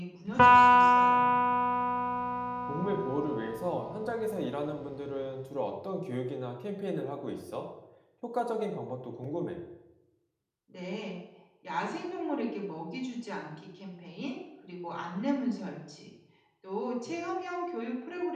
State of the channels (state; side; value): identical; both; correlation 1.00